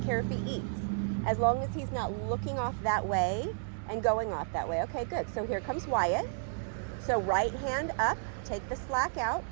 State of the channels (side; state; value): left; silent; digital silence